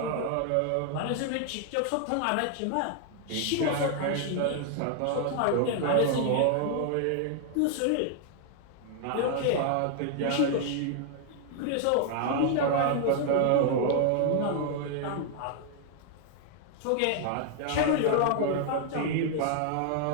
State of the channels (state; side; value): different; both; correlation 0.00